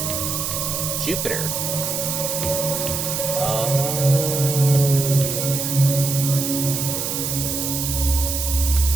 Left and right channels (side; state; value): right; noise; hiss, 2 dB below the sound